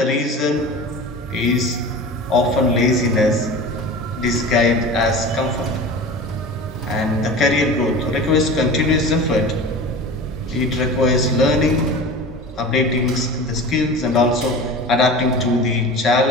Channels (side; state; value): both; normal; correlation 0.34